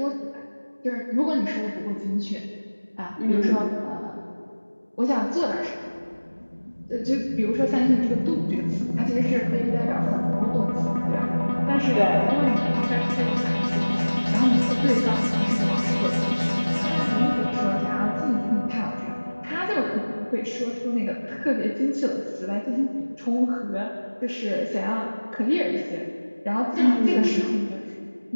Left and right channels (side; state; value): both; inverted; correlation -1.00